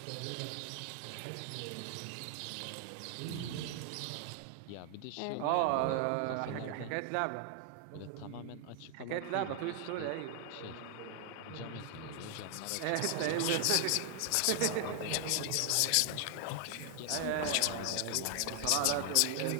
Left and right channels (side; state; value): both; different; correlation 0.00